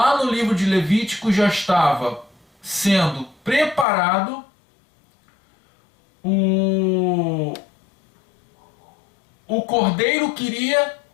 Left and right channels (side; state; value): right; drops out; at 3.9 s